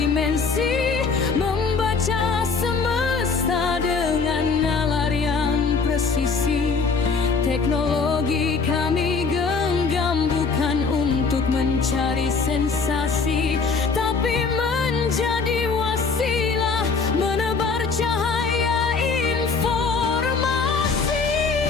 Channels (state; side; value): quieter; right; 4.8 dB